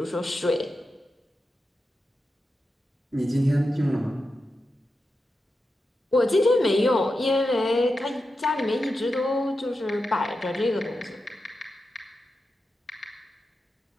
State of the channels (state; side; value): normal; both; correlation 0.90